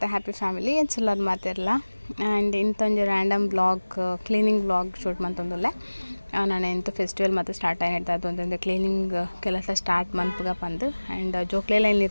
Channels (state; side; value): inverted; both; correlation -1.00